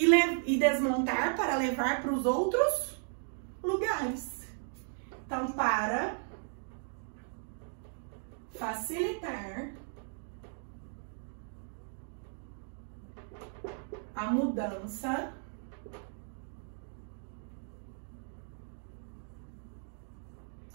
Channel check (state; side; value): silent; left; digital silence